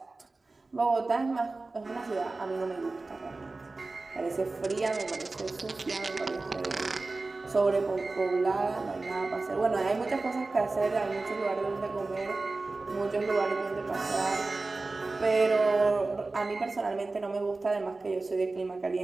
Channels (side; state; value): left; quieter; 3.4 dB